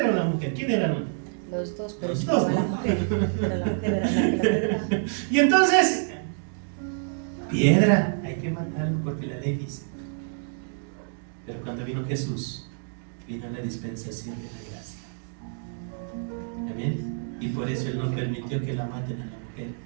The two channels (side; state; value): left; silent; digital silence